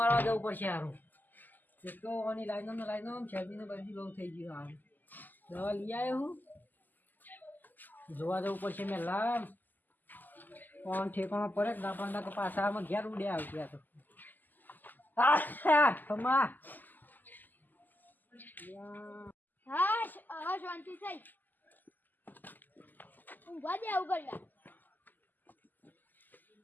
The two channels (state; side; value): late; right; 0.086 ms